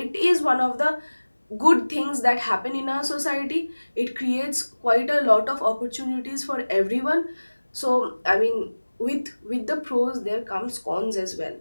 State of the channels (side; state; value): both; inverted; correlation -1.00